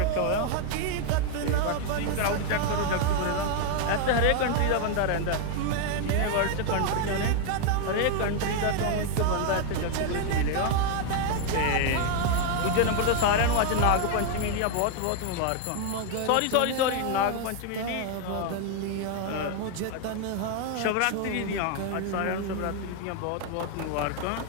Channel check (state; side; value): different; both; correlation 0.00